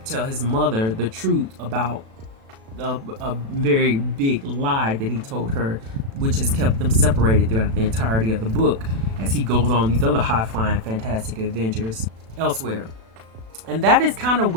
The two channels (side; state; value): left; late; 36 ms